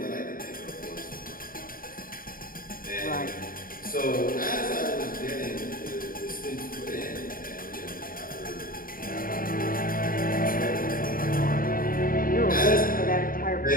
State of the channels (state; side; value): late; right; 0.41 ms